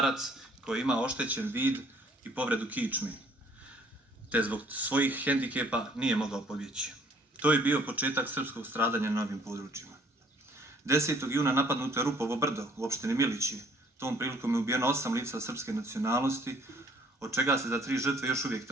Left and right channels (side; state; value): both; normal; correlation 0.59